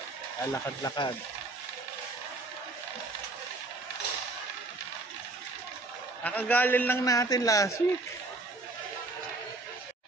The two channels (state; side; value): quieter; left; 3.1 dB